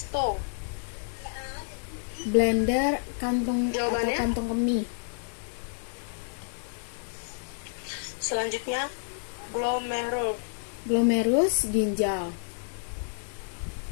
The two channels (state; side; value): silent; right; digital silence